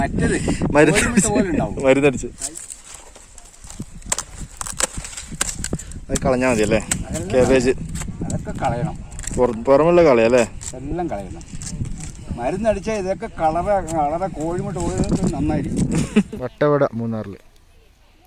മരുന്നടിച്ച് അത് കളഞ്ഞാൽ മതി അല്ലേ? കാബേജ് അതൊക്കെ കളയണം, പുറമുള്ള കളയല്ലേ? എല്ലാം കളയണം. മരുന്നടിച്ചാൽ ഇതൊക്കെ കളറെ കോഴിമുട്ട ഓടുന്നത് നന്നായിരിക്കും. വട്ടവട മൂന്നാറിൽ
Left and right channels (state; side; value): identical; both; correlation 1.00